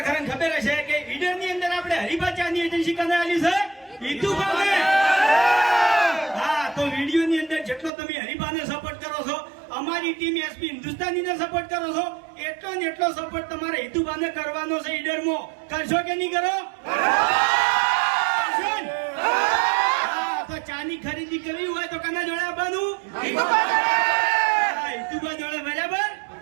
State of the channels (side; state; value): left; drops out; at 7.9 s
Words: ખરા ખબર હશે કે ઈડર ની અંદર આપણે હરિભાચાની એજન્સી કને આલી છે ઈતુભાને. હા, તો વિડીયો ની અંદર જેટલો તમે હરિભાને સપોર્ટ કરો છો, અમારી ટીમ એસપી હિન્દુસ્તાની ને સપોર્ટ કરો છો, એટલો ને એટલો સપોર્ટ તમારે ઈતુભાને કરવાનો છે. ઈડરમાં કરશો કે નહીં કરો? તો ચાની ખરીદી કરવી હોય તો કના જોડે આવવાનું? ઈતુભા જોડે. બરાબર.